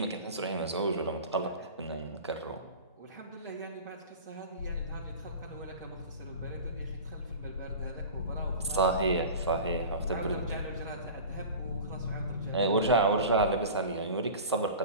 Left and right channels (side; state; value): both; inverted; correlation -0.34